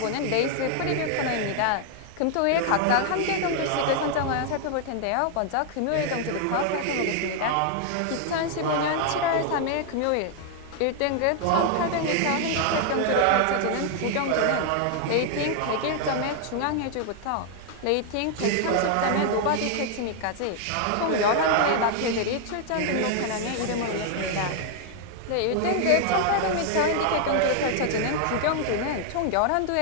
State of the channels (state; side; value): different; both; correlation 0.00